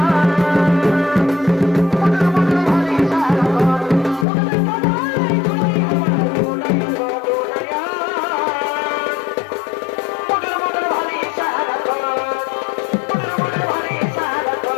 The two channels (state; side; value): drops out; right; at 4.2 s